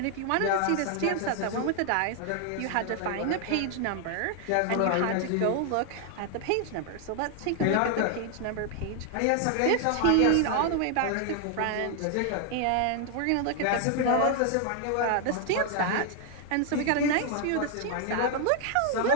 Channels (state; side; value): different; both; correlation 0.00